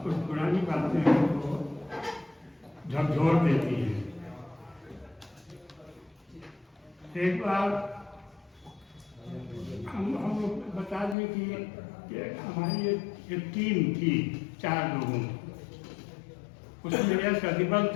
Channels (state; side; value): drops out; right; at 11.2 s